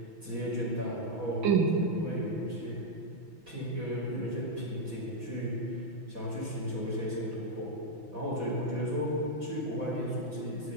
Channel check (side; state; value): left; late; 6.0 ms